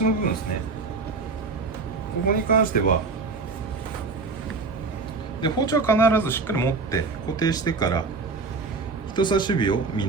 の部分ですね。ここに関してはで包丁は必ずしっかり持って固定してから人差し指を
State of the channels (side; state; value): left; quieter; 4.1 dB